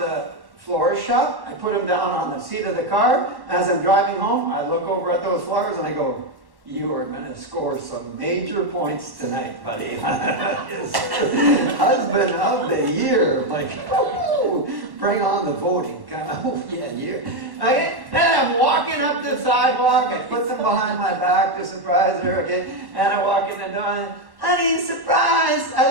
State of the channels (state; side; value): late; left; 1.1 ms